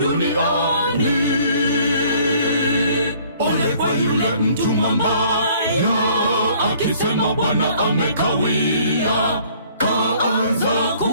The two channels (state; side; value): inverted; both; correlation -0.57